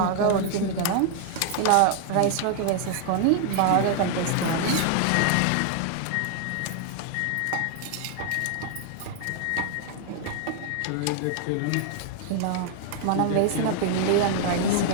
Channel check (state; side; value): different; both; correlation 0.00